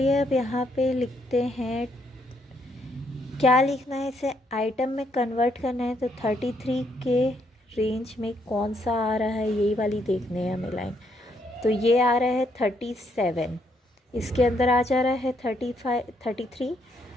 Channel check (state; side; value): normal; both; correlation 0.73